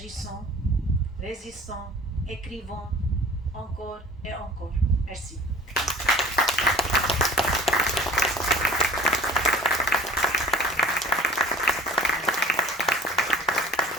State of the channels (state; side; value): normal; both; correlation 0.44